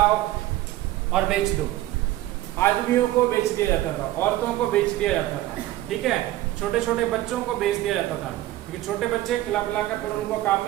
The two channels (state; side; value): quieter; left; 15.3 dB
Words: और बेच दो। आदमियों को बेच दिया जाता था, औरतों को बेच दिया जाता था। ठीक है, छोटे छोटे बच्चों को बेच दिया जाता था, क्योंकि छोटे बच्चे खिला पिला कर फिर उनको काम